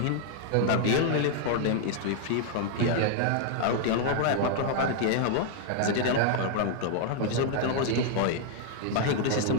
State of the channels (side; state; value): both; different; correlation 0.00